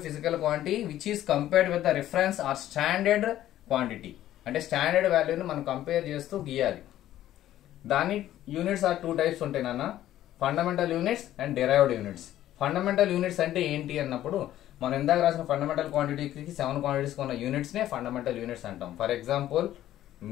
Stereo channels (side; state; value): right; quieter; 13.0 dB